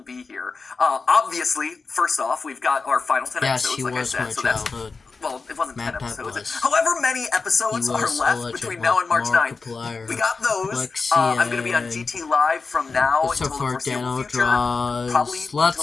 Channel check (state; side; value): quieter; right; 4.4 dB